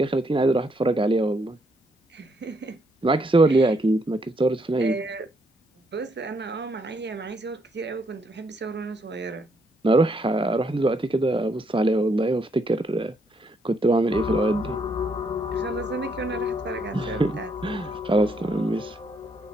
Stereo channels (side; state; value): both; normal; correlation 0.74